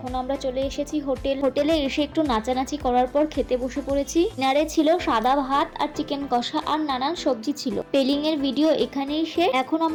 আমরা চলে এসেছি হোটেলে এসে একটু নাচানাচি করার পর খেতে বসে পড়েছি। ডিনারে ছিল সাদা ভাত আর চিকেন কষা আর নানান সবজি ছিল। পেলিং এর ভিডিও এখানেই শেষ। এখন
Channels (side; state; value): both; identical; correlation 1.00